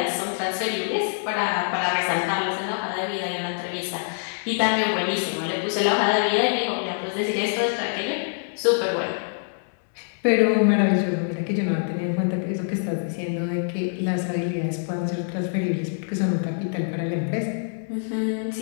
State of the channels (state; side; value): silent; right; digital silence